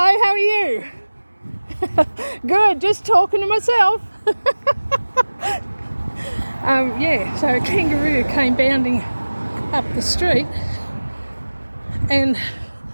how are you? Good, just talking to myself. Yeah, so a kangaroo came bounding up the street, and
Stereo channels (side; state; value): both; inverted; correlation -1.00